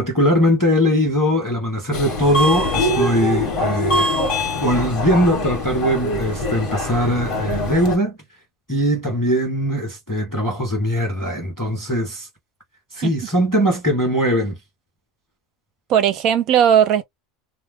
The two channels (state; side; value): normal; both; correlation 0.33